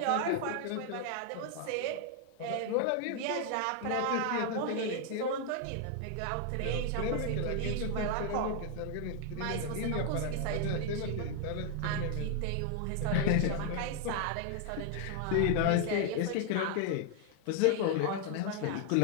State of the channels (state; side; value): different; both; correlation 0.01